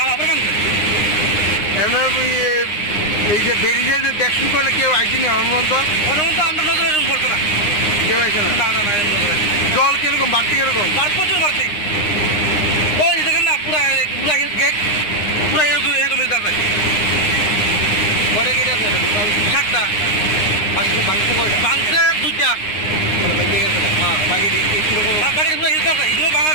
আবার ভাঙছে এমনি এই যে বেরিয়ে যে দেখুন করলে কেউ আইসিনি অনুমন্ত অনুমন্ত আমরা নজরে পড়ছে না কেউ আইসে না না না না জল কিরকম বাড়তি কিরকম প্রচুর বাড়তি ওই দেখেন না পুরা পুরা গেট পুরা এরকম এরকম মিলতে আছে কটা গেট আছে 7টা ভাঙছে কয়টা ভাঙছে 2টা ভেঙে গেছে হ্যাঁ বাকি কিরকম বাকি পুরো হিলতে আছে এগুলো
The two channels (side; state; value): right; late; 9.7 ms